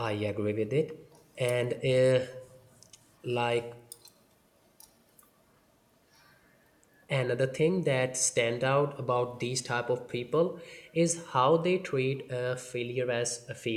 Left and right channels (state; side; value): identical; both; correlation 1.00